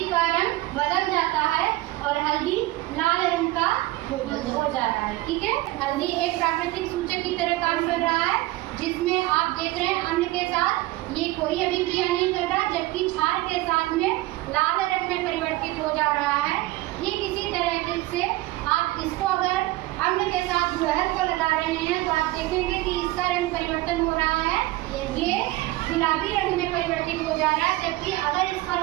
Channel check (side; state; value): left; quieter; 18.5 dB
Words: का रंग बदल जाता है और हल्दी लाल रंग का हो जा रहा है। ठीक है। हल्दी एक प्राकृतिक सूचक की तरह काम कर रहा है जिसमें आप देख रहे हैं अम्ल के साथ ये कोई अभिक्रिया नहीं कर रहा, जबकि क्षार के साथ में लाल रंग में परिवर्तित हो जा रहा है। ठीक इसी तरह से आप इसको अगर अम्ल के साथ गुड़हल को लगा रहे हैं तो आप देखेंगे कि इसका रंग परिवर्तन हो रहा है, ये गुलाबी रंग में परिवर्तित हो जा रहा है। जबकि अगर इस पर